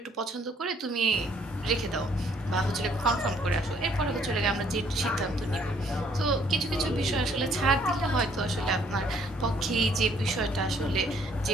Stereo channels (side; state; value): both; normal; correlation 0.64